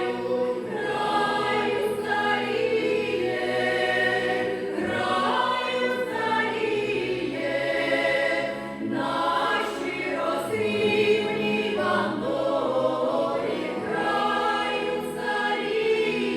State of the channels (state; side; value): identical; both; correlation 1.00